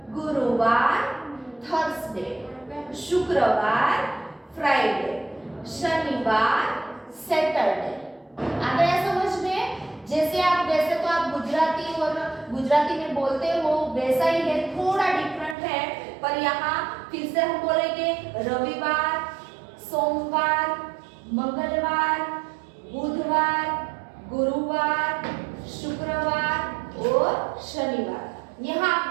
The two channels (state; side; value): drops out; left; at 15.6 s